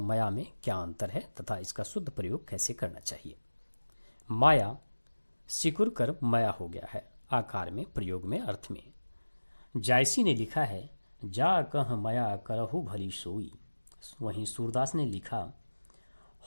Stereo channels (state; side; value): inverted; both; correlation -1.00